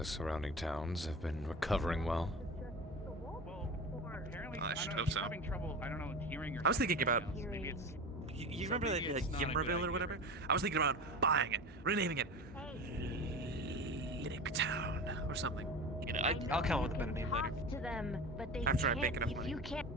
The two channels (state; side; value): normal; both; correlation 0.30